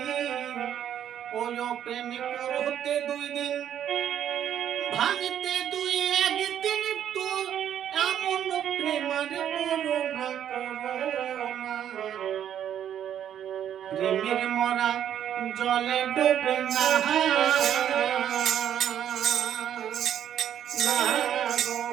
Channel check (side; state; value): left; quieter; 10.0 dB